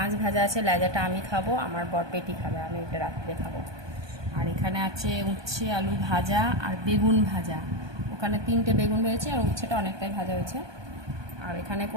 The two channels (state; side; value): late; left; 1.2 ms